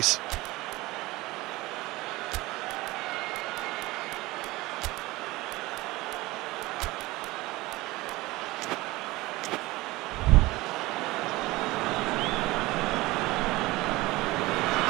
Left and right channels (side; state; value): left; quieter; 20.2 dB